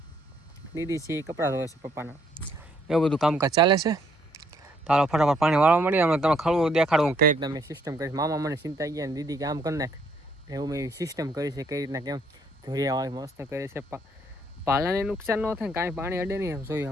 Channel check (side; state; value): both; normal; correlation 0.68